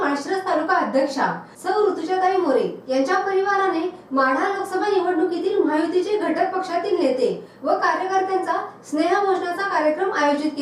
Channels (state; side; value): identical; both; correlation 1.00